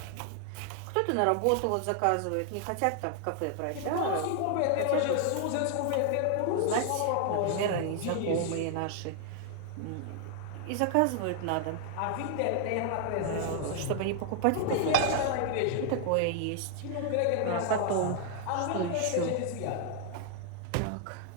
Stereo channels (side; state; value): both; different; correlation 0.00